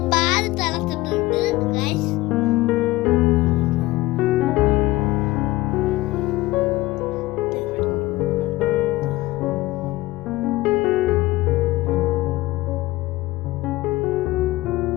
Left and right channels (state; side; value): quieter; right; 18.7 dB